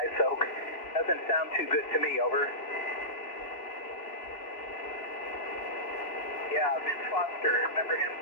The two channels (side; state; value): right; late; 2.7 ms